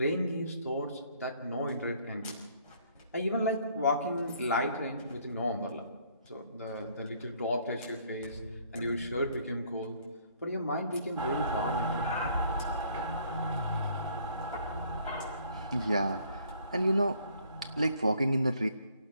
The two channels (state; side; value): inverted; both; correlation -0.62